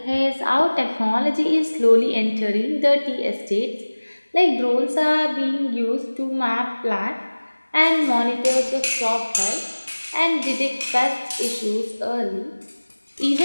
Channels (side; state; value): both; inverted; correlation -1.00